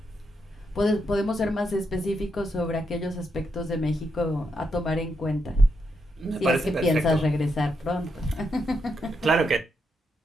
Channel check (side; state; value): both; normal; correlation 0.81